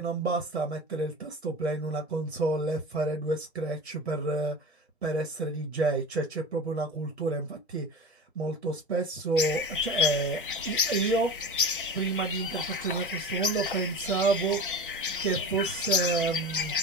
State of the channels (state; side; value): normal; both; correlation 0.31